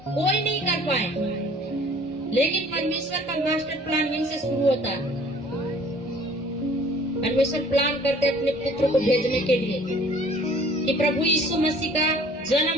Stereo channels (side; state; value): both; normal; correlation 0.53